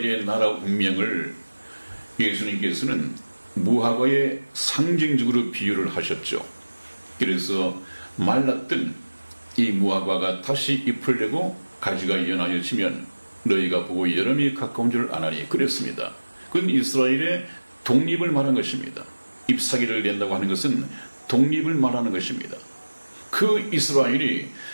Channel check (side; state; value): both; inverted; correlation -1.00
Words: 나라 운명을 예수님께서는 무화과의 상징적으로 비유를 하셨죠. 그래서 말랐던 이 무화과가 다시 잎을 내고 가지가 연하여지면 너희가 보고 여름이 가까운 줄 아나니 그랬습니다. 그건 이스라엘의 독립을 말한 것입니다. 잎사귀를 낸다고 하는 것은 독립을 말하는 것입니다. 그 이스라엘이